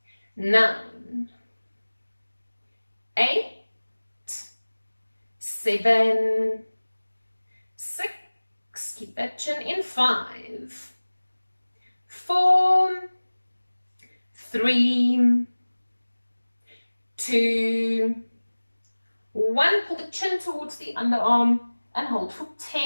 9, 8, 7, 6, keep that chin in. 5, 4, 3, 2, 1. Pull the chin towards the underarm and hold for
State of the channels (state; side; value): inverted; both; correlation -1.00